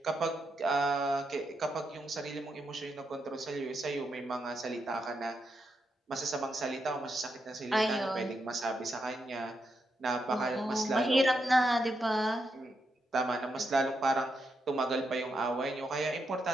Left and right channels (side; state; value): both; normal; correlation 0.83